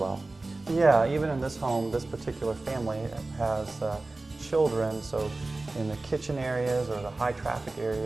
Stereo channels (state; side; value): quieter; left; 3.2 dB